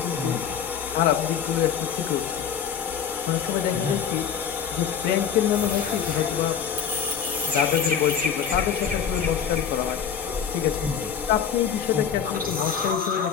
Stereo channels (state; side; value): quieter; right; 7.7 dB